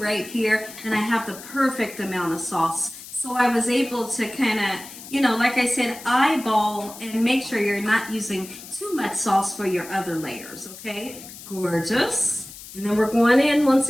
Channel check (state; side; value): noise; left; hiss, 15 dB below the sound